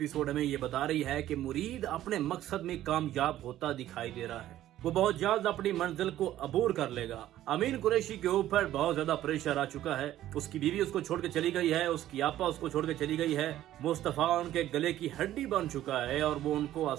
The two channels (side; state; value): left; quieter; 13.2 dB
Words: हमें ये बता रही है कि मुरीद अपने मकसद में कामयाब होता दिखाई दे रहा है। वो बहुत जल्द अपनी मंजिल को अबूर कर लेगा। अमीन कुरैशी के ऊपर बहुत ज्यादा प्रेशर आ चुका है। उसकी बीवी उसको छोड़ के चली गई है, उसकी आपा उसको छोड़ के चली गई है। मुस्तफा उनके गले की हड्डी बन चुका है और वो उनको